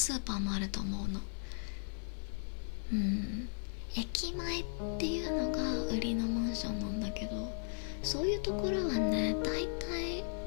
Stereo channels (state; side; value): silent; right; digital silence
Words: ーパーもあると思うの。駅前っていうのが売りのマンションなんだけど、そういうところはね、だい